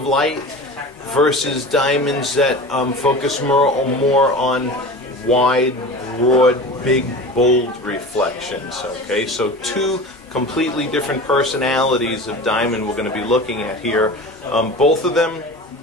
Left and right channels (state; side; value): normal; both; correlation 0.34